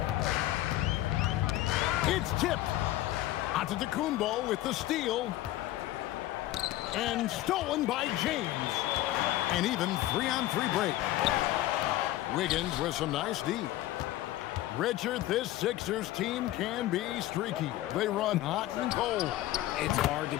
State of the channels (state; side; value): quieter; right; 15.3 dB